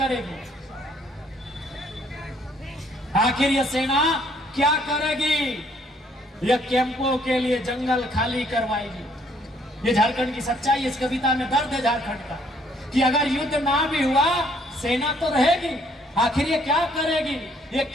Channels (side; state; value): both; normal; correlation 0.65